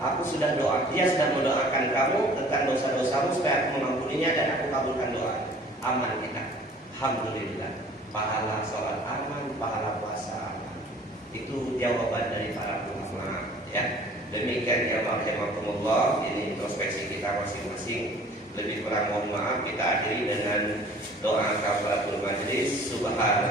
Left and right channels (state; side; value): normal; both; correlation 0.50